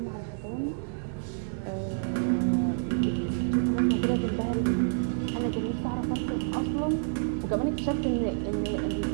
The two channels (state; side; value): silent; left; 59 dB below the other